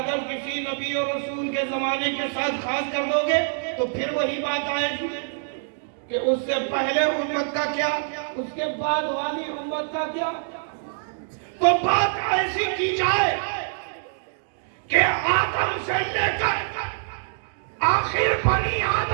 کسی نبی اور رسول کے زمانے کے ساتھ خاص کر دو گے تو پھر وہی بات آئے گی کہ اس سے پہلے امت کا کیا، اس کے بعد والی امت کا کیا۔ تو بات ایسی کی جائے کہ آدم سے لے کر آخر بنی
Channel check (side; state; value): left; silent; digital silence